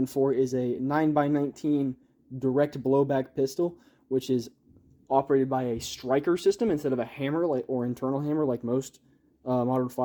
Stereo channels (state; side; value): identical; both; correlation 1.00